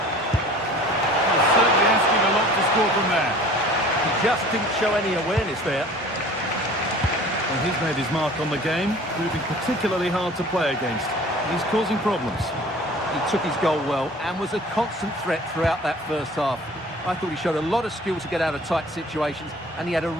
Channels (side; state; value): both; normal; correlation 0.46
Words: Well, certainly asking a lot to score from there. He just didn't show any awareness there. Well, he's made his mark on the game, proving particularly hard to play against. He's causing problems. He took his goal well and was a constant threat throughout that first half. I thought he showed a lot of skill to get out of tight situations, and he had a